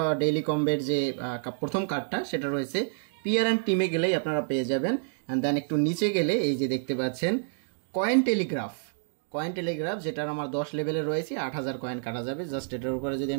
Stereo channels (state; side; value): silent; left; digital silence